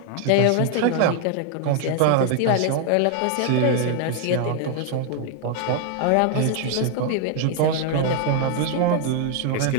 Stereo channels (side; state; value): both; different; correlation 0.00